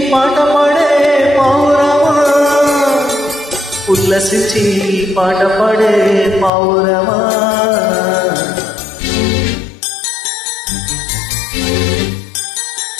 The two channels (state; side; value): drops out; right; at 6.5 s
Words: పాట పాడే పౌరమా, ఉల్లసించి పాట పాడే పౌరమా.